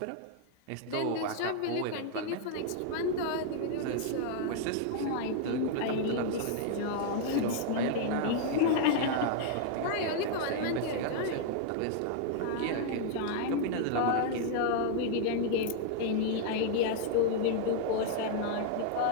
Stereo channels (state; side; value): different; both; correlation 0.00